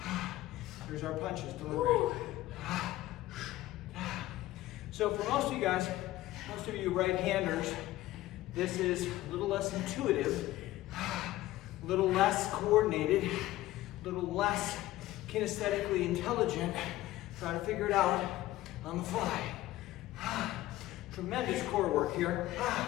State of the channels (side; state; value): right; quieter; 16.1 dB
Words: Here's our punches delivered. So for most of you guys, most of you right-handers, this is a little less intuitive, a little less coordinated, a little less kinesthetically intelligent. Try to figure it out on the fly. Tremendous core work here.